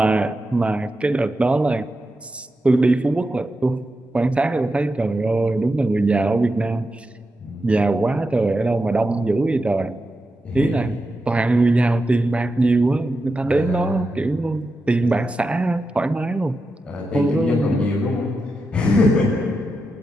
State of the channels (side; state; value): both; normal; correlation 0.89